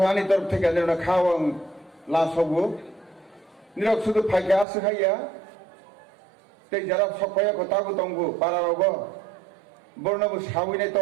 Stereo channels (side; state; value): left; drops out; at 4.7 s